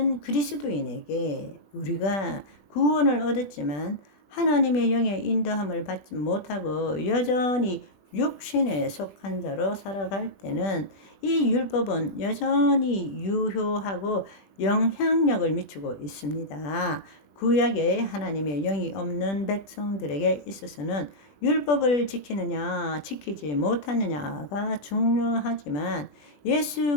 그리스도인에게 우리가 구원을 얻었지만 하나님의 영의 인도함을 받지 못하고 여전히 육신에 속한 자로 살아갈 때는 이 율법은 여전히 유효하고 영향력을 미치고 있습니다. 구약에 하나님의 영이 없는 백성들에게 있어서는 율법을 지키느냐 지키지 못하느냐가 중요하지만,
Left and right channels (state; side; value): late; right; 20 ms